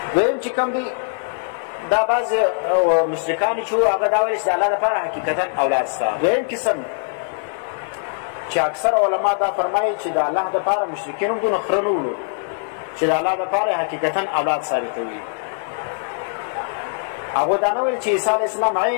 دویم چې کوم دی دا بعض مشرکان چې وو هغه دا ویل چې د الله دپاره حقیقتا اولاد شته دویم قسم چې اکثر علما دا فرمایي چې د الله دپاره مشرکین هم دونه خره نه وړو چې د الله دپاره حقیقتا اولاد ثابتوي هغو دا نه ویل چې عیسی علیه السلام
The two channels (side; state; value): right; silent; digital silence